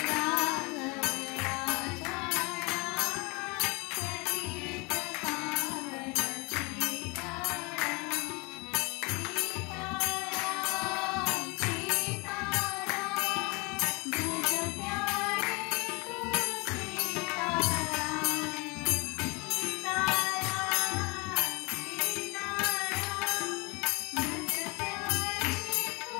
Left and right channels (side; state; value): right; quieter; 27.7 dB